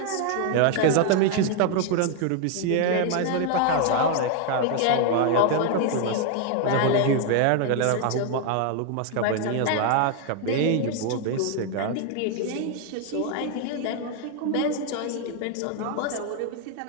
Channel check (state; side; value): different; both; correlation 0.00